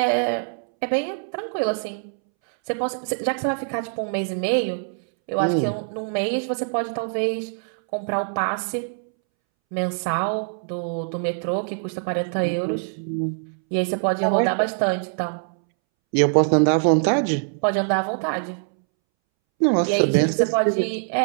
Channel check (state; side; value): silent; left; 63 dB below the other